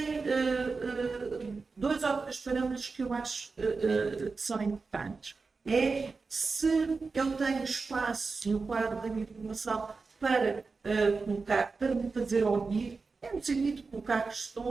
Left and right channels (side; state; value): left; quieter; 4.3 dB